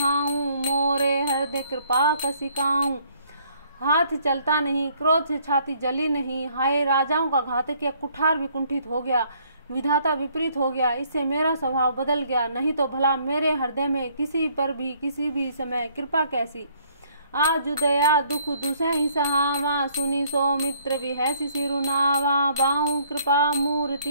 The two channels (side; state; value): both; inverted; correlation -0.64